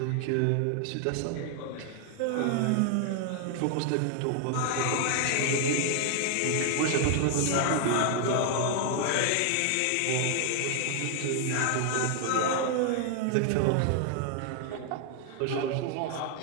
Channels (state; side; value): different; both; correlation 0.00